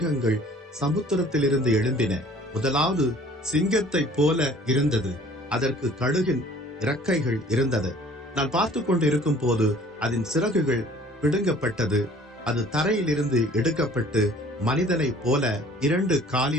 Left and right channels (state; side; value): normal; both; correlation 0.52